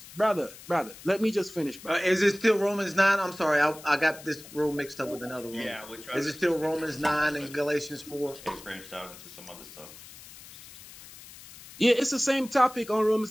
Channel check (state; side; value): noise; left; hiss, 18 dB below the sound